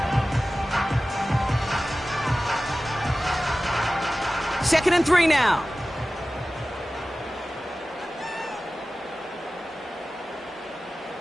Second and 3 now.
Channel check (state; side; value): normal; both; correlation 0.96